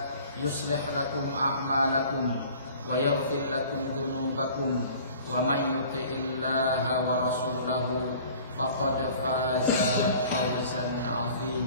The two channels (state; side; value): inverted; both; correlation -0.48